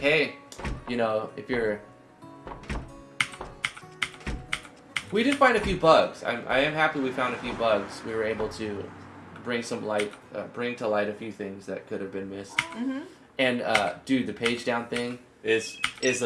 hey, you know, if you're. We did find a few bugs. I am happy we found a few bugs. We were able to bring some light, bring to light a few things that could have been missed. Mm-hmm. And dude, the page down thing is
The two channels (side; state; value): both; identical; correlation 1.00